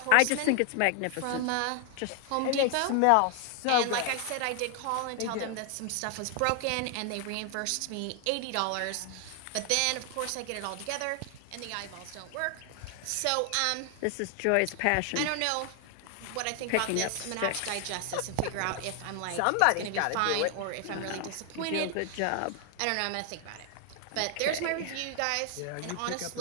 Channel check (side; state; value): both; different; correlation 0.00